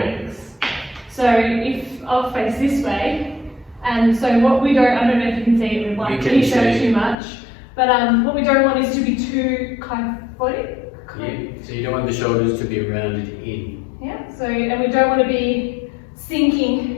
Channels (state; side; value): drops out; right; at 7.2 s